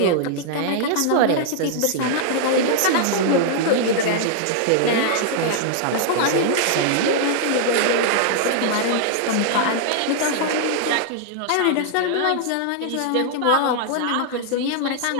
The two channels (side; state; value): both; different; correlation -0.01